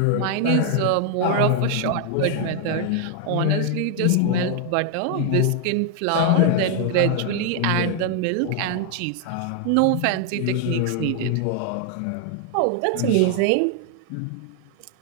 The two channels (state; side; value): different; both; correlation 0.00